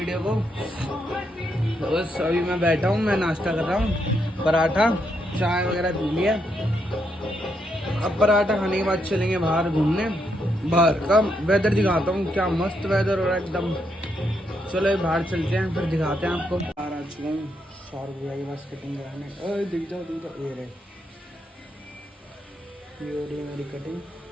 को। तो बस अभी मैं बैठा हूँ, मैं नाश्ता कर रहा हूँ, पराठा चाय वगैरह पी लिया। अब पराठा खाने के बाद चलेंगे बाहर घूमने। बाहर का वेदर दिखाता हूँ, क्या मस्त वेदर हो रहा है एकदम। चलो बाहर चलते हैं, फिर दिखाते हैं आपको। बाहर आ चुका हूँ सौरभ भैया के पास कटिंग कराने। ओए दिख जाओ ये रहे, ये हो रही है मेरी कटिंग।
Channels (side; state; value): both; normal; correlation 0.79